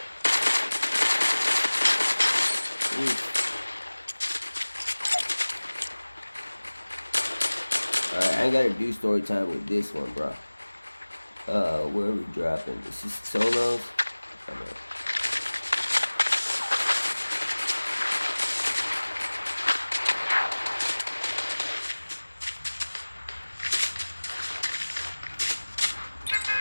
Alright, I ain't gotta do story time with this one, bro. Where are we dropping? This is solos. Okay.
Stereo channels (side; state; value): both; inverted; correlation -1.00